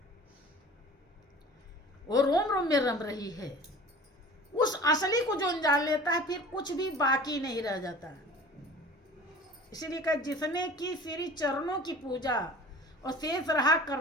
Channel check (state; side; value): normal; both; correlation 0.43